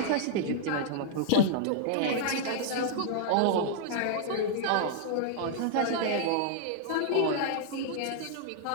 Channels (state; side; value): different; both; correlation -0.01